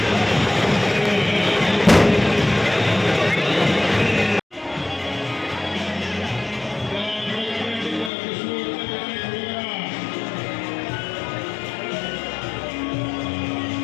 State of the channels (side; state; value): right; drops out; at 8.1 s